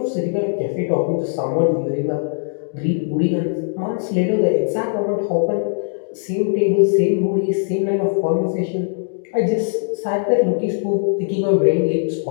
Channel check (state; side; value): silent; right; digital silence